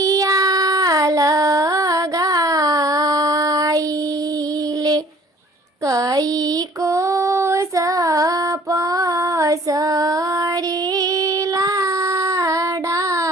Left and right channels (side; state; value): both; normal; correlation 0.54